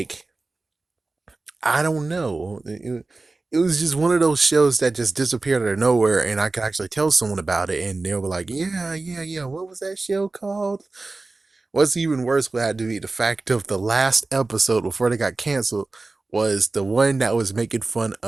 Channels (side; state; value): left; quieter; 3.4 dB